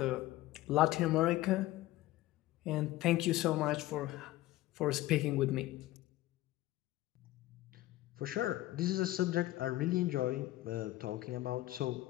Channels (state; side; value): quieter; right; 16.6 dB